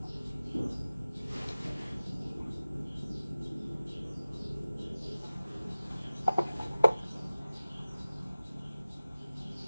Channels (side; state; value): both; inverted; correlation -0.97